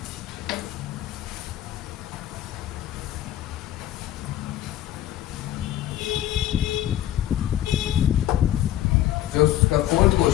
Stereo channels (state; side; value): quieter; right; 12.8 dB